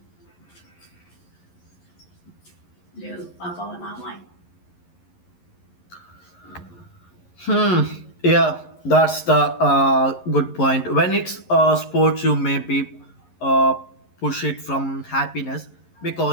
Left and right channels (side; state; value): right; late; 11 ms